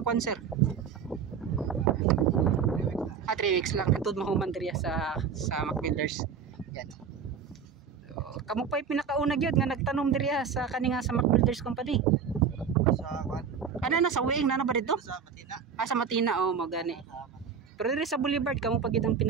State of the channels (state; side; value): quieter; left; 6.6 dB